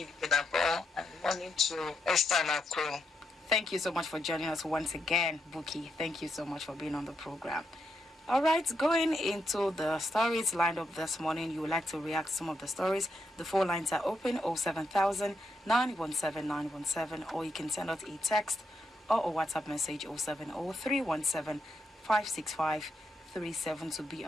Vidabo, and morning to Esther and our crew. Thank you so much for joining us once again, Buki. Thank you so much for being on the program. All right, going into the stories lined up this morning, you would like to react to some of the stories. The phone lines are open 07000 917 917, or you can send us a text or a WhatsApp message 070 565 37 to be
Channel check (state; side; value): normal; both; correlation 0.81